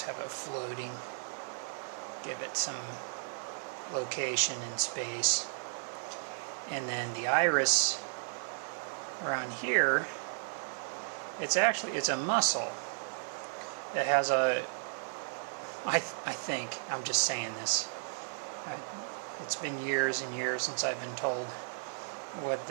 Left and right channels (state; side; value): silent; left; digital silence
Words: have it floating. Give it some location and space. And then the iris around here, it's a muscle that has a, I think, I'm just saying this, it's been years and years since I've been told what